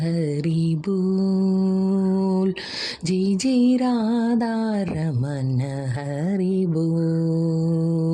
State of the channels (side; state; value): both; identical; correlation 1.00